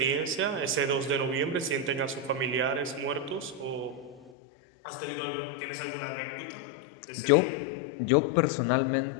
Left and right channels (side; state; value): right; drops out; at 4.3 s